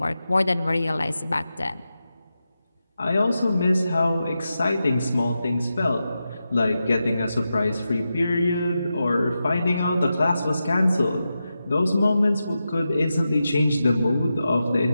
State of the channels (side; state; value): both; inverted; correlation -0.90